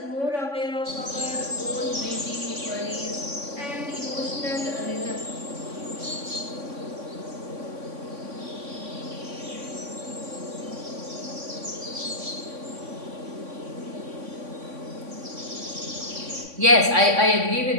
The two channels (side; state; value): left; late; 3.5 ms